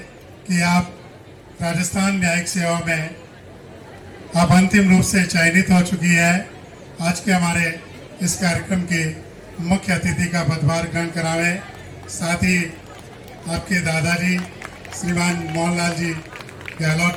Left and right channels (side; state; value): both; identical; correlation 1.00